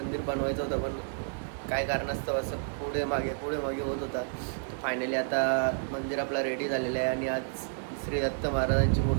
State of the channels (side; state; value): left; silent; digital silence